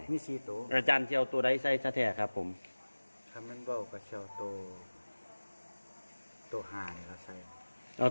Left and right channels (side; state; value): both; inverted; correlation -1.00